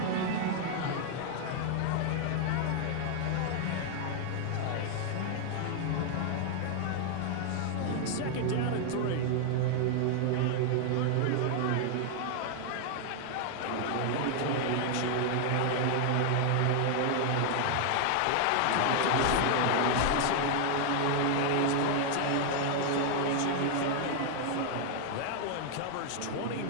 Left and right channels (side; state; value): both; different; correlation 0.00